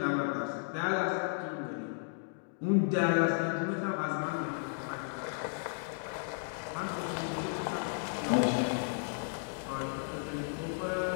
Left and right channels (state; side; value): silent; right; digital silence